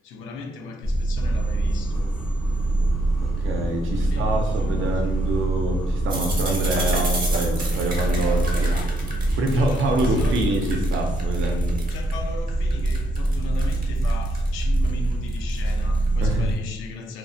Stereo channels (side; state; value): both; normal; correlation 0.77